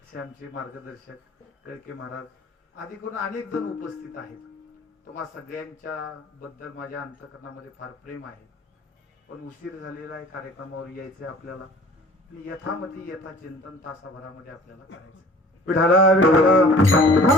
असे आमचे मार्गदर्शक कळके महाराज, आदी करून अनेक जण उपस्थित आहेत. तुम्हा सगळ्यांच्या बद्दल माझ्या अंतःकरणामध्ये फार प्रेम आहे. पण उशीर झालेला आहे, कार्यक्रमावर यायचे आपल्याला. यथामती यथा चिंतन तासाभरामध्ये आपल्याला करायचं. विठाला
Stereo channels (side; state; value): both; normal; correlation 0.48